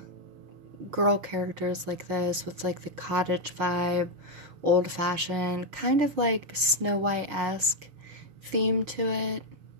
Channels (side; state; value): left; late; 6.4 ms